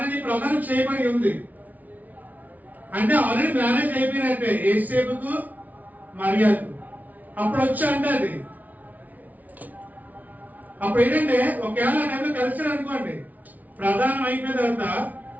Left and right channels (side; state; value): left; late; 0.075 ms